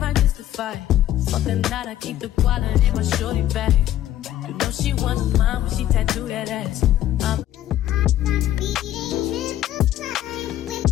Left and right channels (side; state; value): right; quieter; 12.6 dB